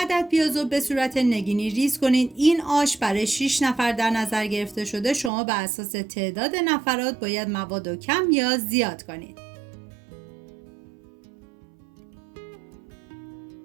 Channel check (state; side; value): drops out; left; at 5.3 s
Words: پیاز رو به صورت نگینی ریز کنید. این آش برای 6 نفر در نظر گرفته شده. شما بر اساس تعداد نفرات باید مواد رو کم یا زیاد کنید.